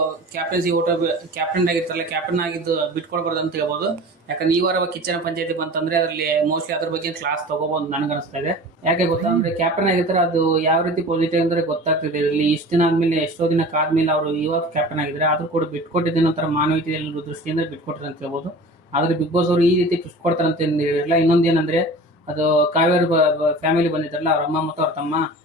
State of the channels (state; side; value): normal; both; correlation 0.39